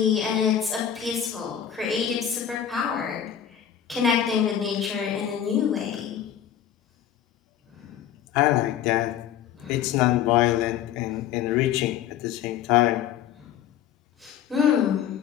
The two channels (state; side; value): quieter; right; 9.9 dB